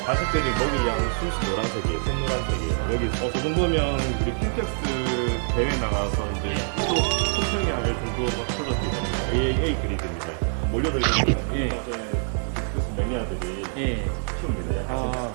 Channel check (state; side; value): silent; left; digital silence